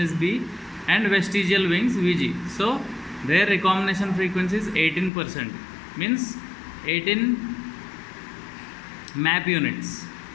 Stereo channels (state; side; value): drops out; right; at 5.1 s